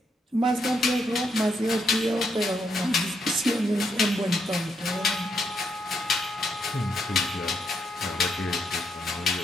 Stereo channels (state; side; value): normal; both; correlation 0.78